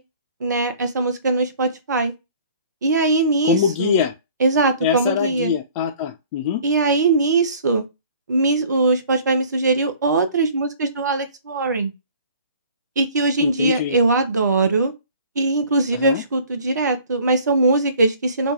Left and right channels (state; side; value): inverted; both; correlation -0.51